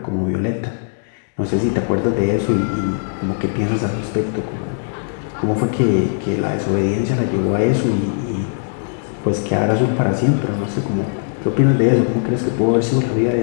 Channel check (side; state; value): right; silent; digital silence